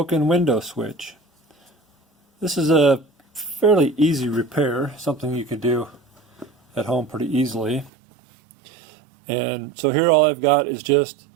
window switch. This is a fairly easy repair, something you can do at home pretty easily. And so here all I've got is just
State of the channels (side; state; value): left; drops out; at 7.9 s